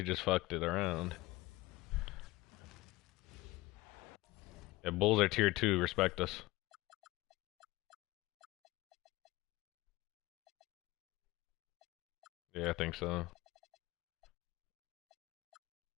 just fucked it around. Yeah, Bulls are tier 2. Respect us. Yeah, I think so.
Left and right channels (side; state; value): right; quieter; 20.2 dB